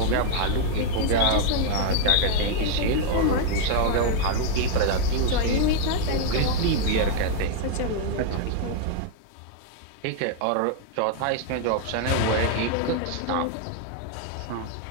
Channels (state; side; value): different; both; correlation 0.00